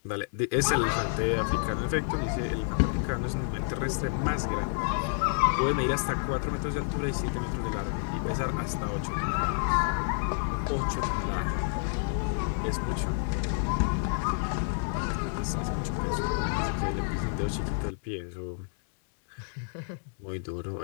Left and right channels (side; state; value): right; silent; 58 dB below the other